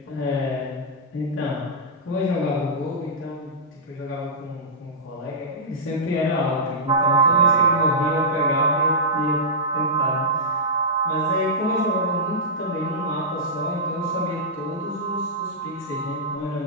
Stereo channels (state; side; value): normal; both; correlation -0.13